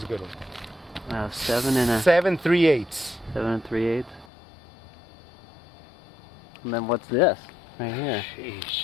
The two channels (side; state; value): right; drops out; at 4.2 s